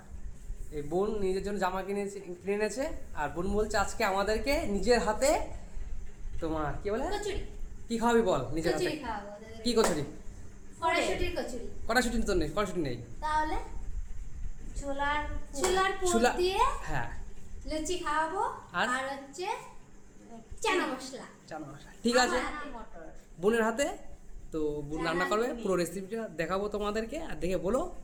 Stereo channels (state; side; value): identical; both; correlation 1.00